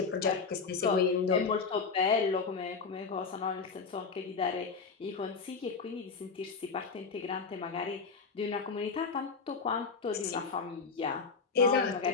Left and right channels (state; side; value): quieter; right; 5.0 dB